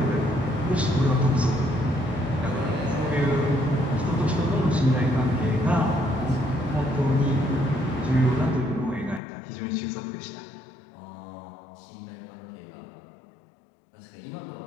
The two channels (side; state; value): right; drops out; at 9.2 s